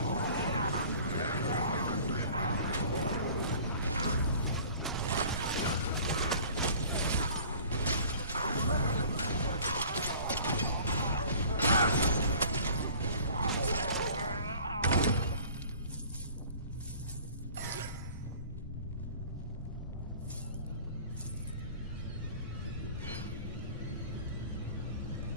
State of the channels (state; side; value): inverted; both; correlation -0.47